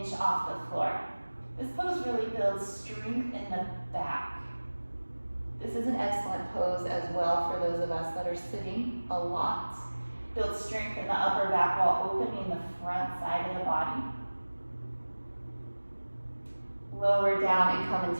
off the floor. This pose really builds strength in the back. This is an excellent pose as well for those of us that are sitting a lot. Build strength in the upper back while opening the front side of the body. Lower down and come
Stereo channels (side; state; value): both; inverted; correlation -1.00